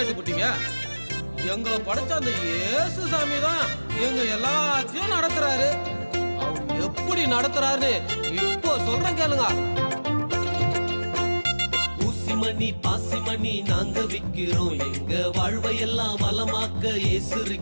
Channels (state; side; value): inverted; both; correlation -1.00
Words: எங்களை படைச்ச அந்த இயேசு சாமி தான் எங்க எல்லாத்தையும் நடத்துறாரு. அவர் எப்படி நடத்துறாரு இப்போ சொல்றேன் கேளுங்க. ஊசிமணி பாசிமணி நாங்க விக்கிறோம், எங்க வாழ்வையெல்லாம் வளமாக்க இயேசு